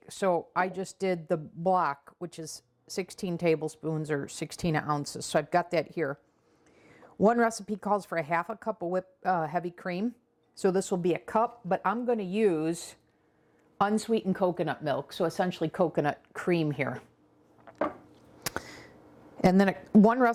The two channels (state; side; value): identical; both; correlation 1.00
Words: So I just did the block, which is 16 tablespoons or 16 ounces. So I've got that here. One recipe calls for a half a cup of heavy cream. So this will be a cup, but I'm going to use unsweetened coconut milk. So essentially coconut cream here. And then one